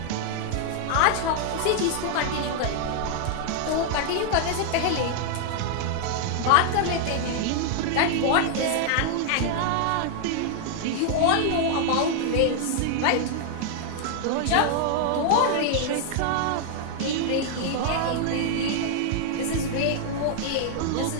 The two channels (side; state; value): both; different; correlation 0.00